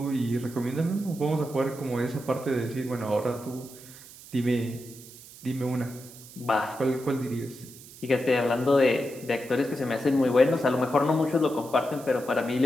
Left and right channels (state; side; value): noise; right; hiss, 18 dB below the sound